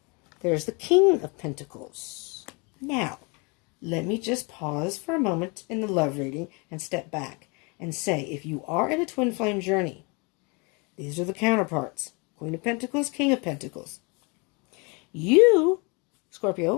There's the King of Pentacles. Now, let me just pause for a moment in the love reading and step back and say, if you are in a twin flame journey, these are the counterparts. Queen of Pentacles, King of Pentacles. You,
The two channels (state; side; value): quieter; right; 30.7 dB